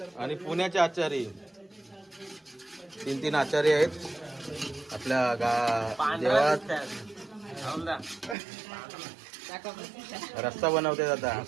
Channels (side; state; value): left; drops out; at 8.3 s